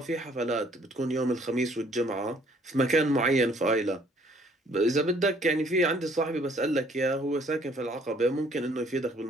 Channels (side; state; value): both; normal; correlation 0.61